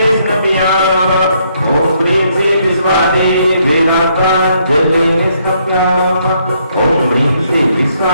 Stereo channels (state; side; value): inverted; both; correlation -0.72